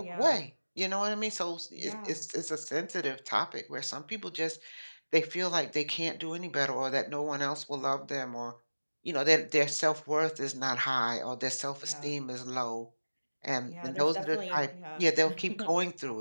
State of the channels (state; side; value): inverted; both; correlation -1.00